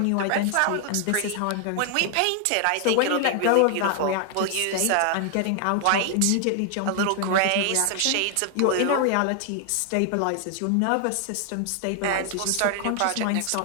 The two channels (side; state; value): both; different; correlation 0.00